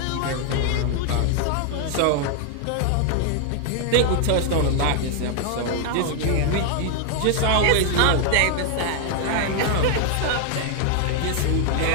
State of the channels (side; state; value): both; different; correlation 0.00